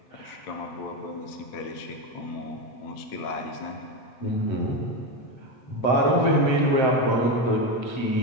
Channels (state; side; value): late; right; 7.8 ms